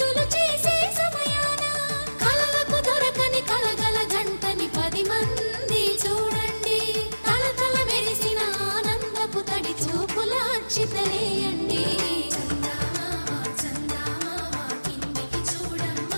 చేసే సమయాన కలలకు దొరకని కలగల జంటని 10 మంది చూడండి తలతల మెరిసిన ఆనందపు తడి చూపుల అక్షితలేయండి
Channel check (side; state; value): both; inverted; correlation -1.00